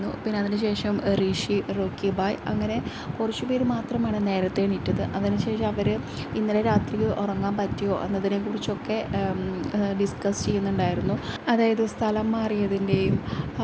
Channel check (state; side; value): identical; both; correlation 1.00